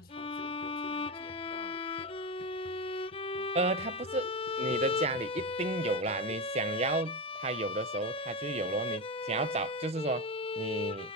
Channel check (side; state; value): both; normal; correlation 0.17